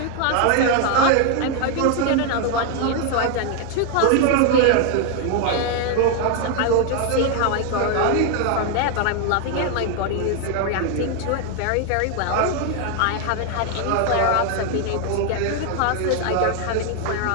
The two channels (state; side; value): different; both; correlation 0.01